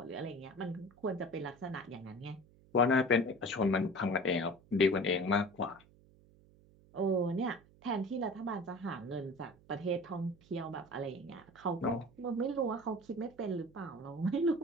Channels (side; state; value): right; noise; hum, 27 dB below the sound